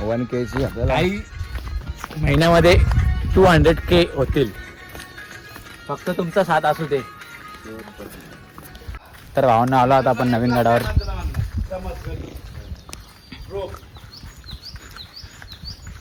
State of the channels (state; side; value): identical; both; correlation 1.00